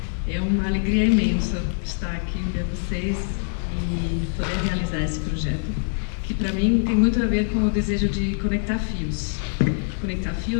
É uma alegria imensa estar aqui ver vocês e poder realizar esse projeto, que para mim tem muito a ver com o desejo de conectar fios. Conectar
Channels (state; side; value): silent; right; 63 dB below the other